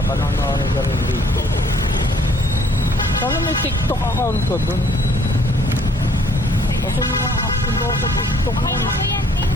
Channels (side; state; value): both; normal; correlation 0.62